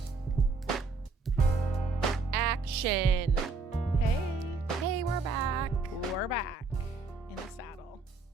Action. Hey, we're back. We're back in the saddle.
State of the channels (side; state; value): left; quieter; 4.0 dB